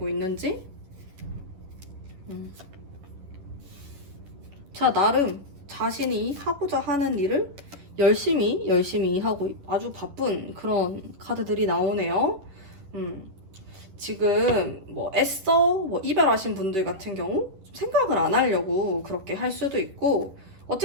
있는지. 자, 나름 자신이 하고자 하는 일을 열심히 하고 아주 바쁜 그런 카드들이 나오네요. 지금 뭐 애써 이별하신 분들 같은 경우 좀 생각을 안 하려고 그렇게 할 수도 있고,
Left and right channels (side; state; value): left; late; 11 ms